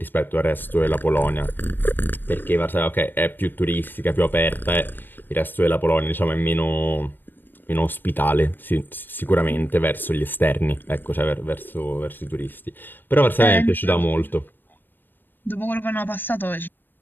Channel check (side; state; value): right; late; 0.093 ms